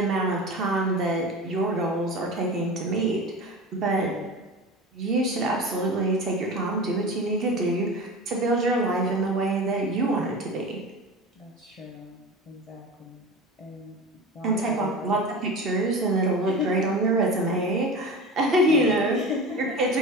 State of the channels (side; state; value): both; normal; correlation 0.31